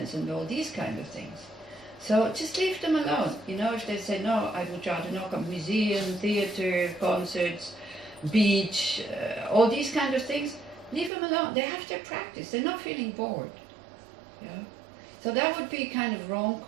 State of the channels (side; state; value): left; drops out; at 11.1 s